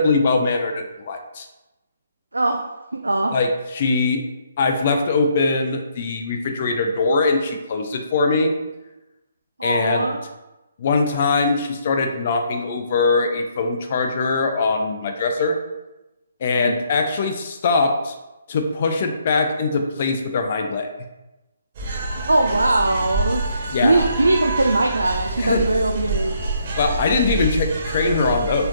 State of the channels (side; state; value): both; inverted; correlation -0.70